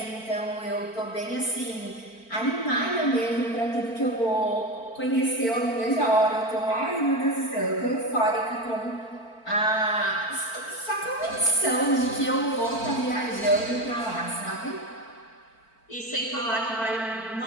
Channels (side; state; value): right; late; 4.5 ms